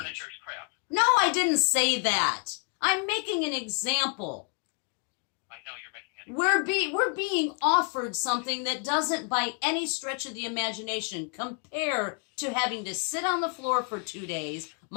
crap. No, I didn't say that. I'm making an example. I know you're making an We're being offered something that doesn't, by any stretch of the imagination, compare to having to sit on the floor for 2 days,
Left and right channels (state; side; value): quieter; right; 37.2 dB